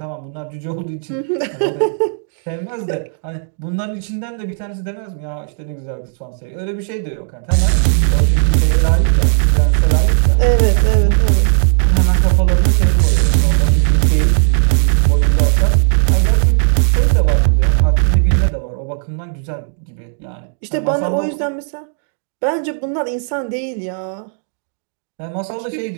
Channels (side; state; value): left; silent; digital silence